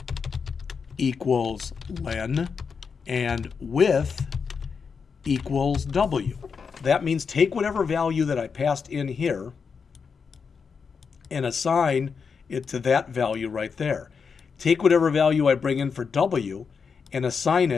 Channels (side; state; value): right; quieter; 5.8 dB